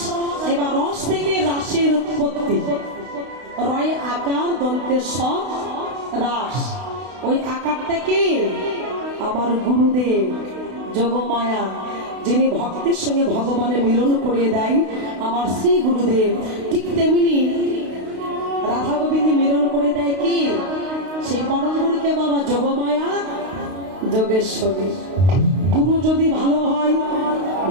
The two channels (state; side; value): late; left; 32 ms